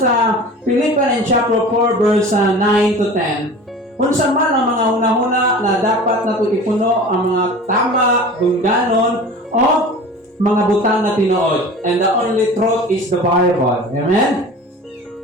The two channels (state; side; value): normal; both; correlation 0.38